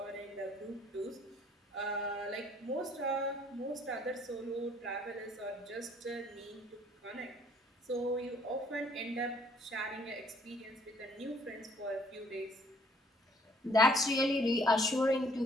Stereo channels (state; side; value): normal; both; correlation 0.61